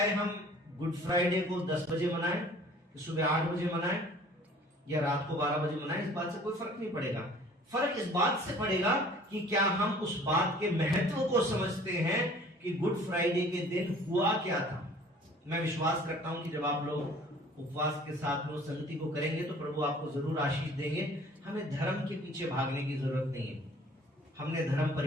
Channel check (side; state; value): both; normal; correlation 0.51